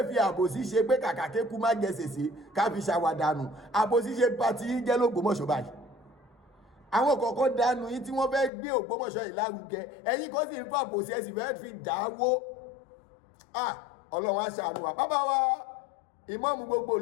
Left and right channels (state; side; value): drops out; right; at 8.5 s